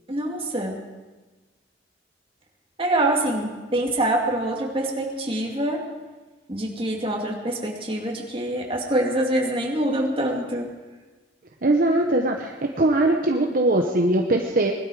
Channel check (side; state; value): both; normal; correlation 0.40